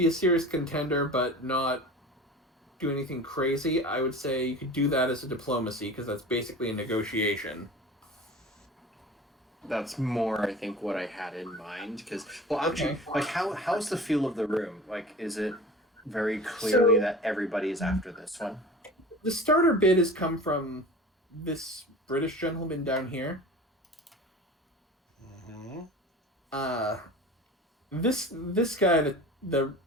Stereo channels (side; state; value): both; normal; correlation 0.38